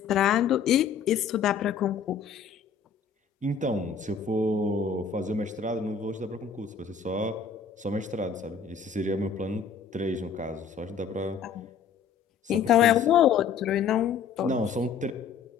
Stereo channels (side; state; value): right; quieter; 6.5 dB